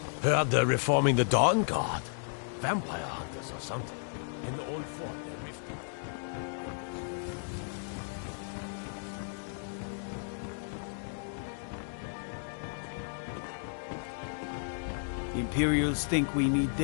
Heard they're reforming the Dawn Guard. Vampire hunters or something. In the old fort, they're rifting. Imperials think we need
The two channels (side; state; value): right; silent; digital silence